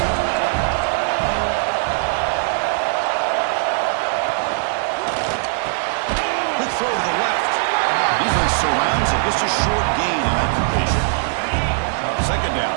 Quick throw to the left. Defense surrounds it. Just a short gain on that completion. Second down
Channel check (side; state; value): left; silent; digital silence